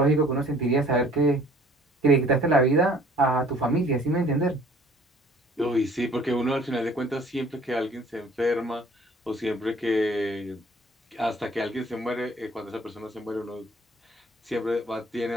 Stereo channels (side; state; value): both; normal; correlation 0.54